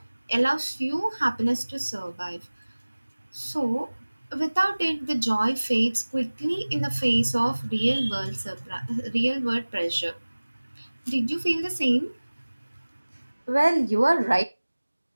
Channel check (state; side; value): inverted; both; correlation -1.00